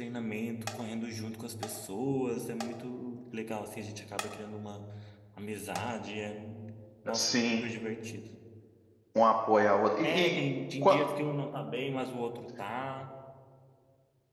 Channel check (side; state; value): both; identical; correlation 1.00